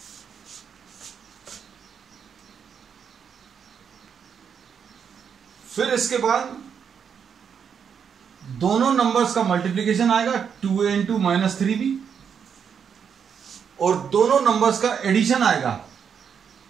फिर इसके बाद दोनों नंबर्स का मल्टीप्लिकेशन आएगा 2a into -3b, और दोनों नंबर्स का एडिशन आएगा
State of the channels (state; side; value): quieter; left; 7.2 dB